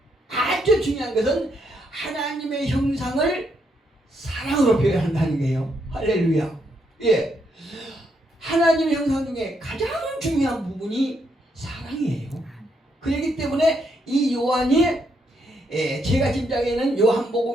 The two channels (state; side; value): normal; both; correlation 0.76